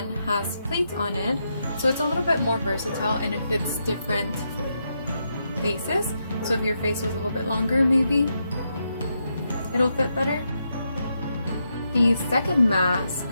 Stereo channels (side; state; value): both; inverted; correlation -0.82